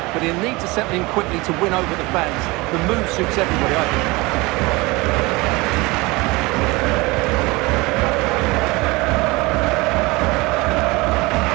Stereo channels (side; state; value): left; quieter; 23.3 dB